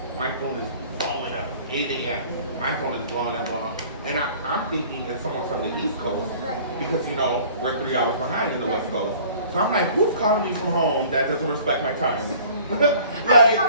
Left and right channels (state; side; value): inverted; both; correlation -0.49